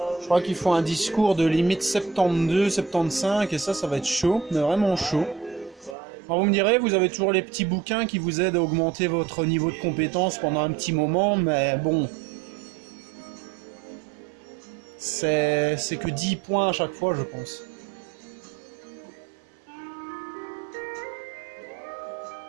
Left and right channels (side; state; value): left; drops out; at 6.0 s